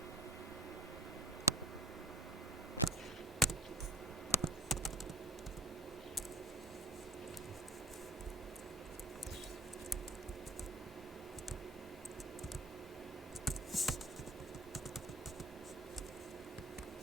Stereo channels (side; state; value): both; normal; correlation 0.38